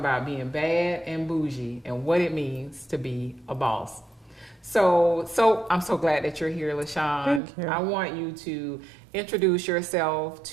being bad and bougie and what it means to be a boss. So I'm so glad that you're here, LaShoun. Thank you. I want you to introduce yourself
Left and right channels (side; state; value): left; drops out; at 7.4 s